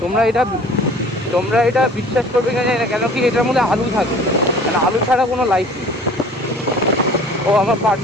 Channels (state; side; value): normal; both; correlation 0.48